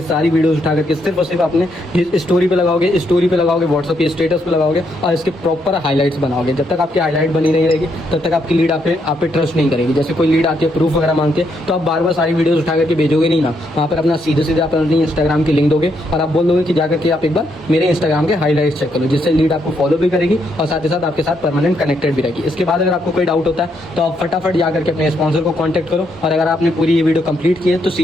सारी वीडियोस उठा करके सिर्फ और सिर्फ अपने स्टोरी पे लगाओगे, व्हाट्सएप के स्टेटस पे लगाओगे और इसके प्रॉपर हाईलाइट्स बनाओगे। जब तक आपकी हाईलाइट बनी नहीं रहेगी तब तक आपकी लीड आप पे ट्रस्ट नहीं करेगी। जैसे कोई लीड आती है प्रूफ वगैरह मांगते हैं तो आप बार बार सारी वीडियोस उठा करके भेजोगे नहीं ना, वहाँ पर अपना सीधे सीधे आप अपनी इंस्टाग्राम की लिंक दोगे और आप बोल दोगे कि जाकर के आप एक बार मेरे इंस्टाग्राम के हाईलाइट्स चेक करो, जिससे लीड आपको फॉलो भी करेगी और साथ ही साथ आपके साथ परमानेंट कनेक्टेड भी रहेगी। इसके बाद अगर आपको कोई डाउट होता है तो आप फटाफट जा करके अपने स्पॉन्सर को कॉन्टैक्ट करो, और अगर आपने पूरी ये वीडियो कंप्लीट की है तो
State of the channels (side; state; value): both; normal; correlation 0.76